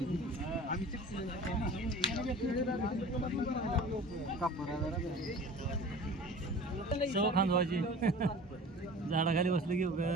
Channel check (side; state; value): both; normal; correlation 0.41